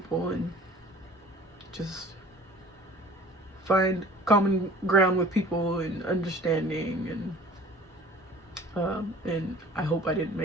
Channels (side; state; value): both; normal; correlation 0.46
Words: and just find common ground with people and understanding. And I hope I didn't